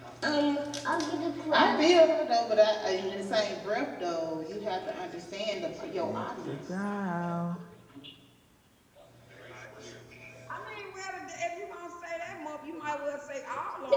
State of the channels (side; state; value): both; identical; correlation 1.00